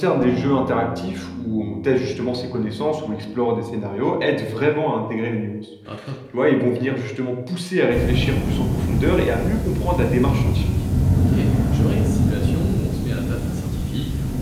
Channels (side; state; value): both; identical; correlation 1.00